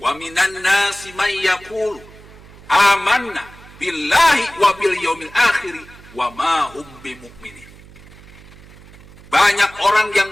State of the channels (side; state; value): right; noise; hum, 21 dB below the sound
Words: minan nasi may yaqulu amanna billahi wa bil yaumil akhir wa ma hum bimu'minin. Banyak orang yang